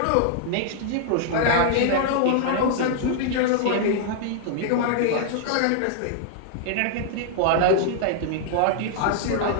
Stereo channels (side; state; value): both; different; correlation -0.01